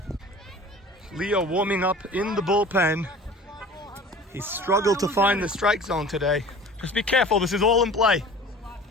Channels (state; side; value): normal; both; correlation 0.42